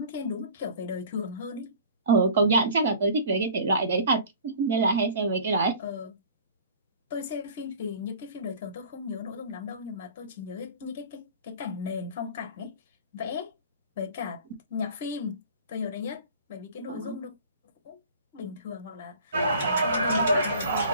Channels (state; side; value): inverted; both; correlation -0.44